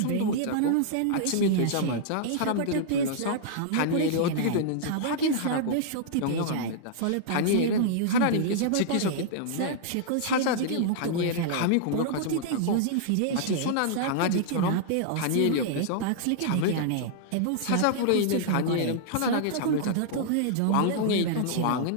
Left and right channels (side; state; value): both; different; correlation -0.01